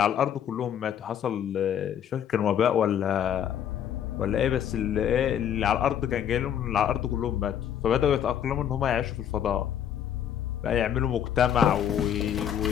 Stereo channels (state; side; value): quieter; right; 9.5 dB